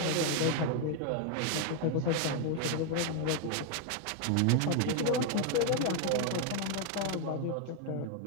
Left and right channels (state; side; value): different; both; correlation 0.00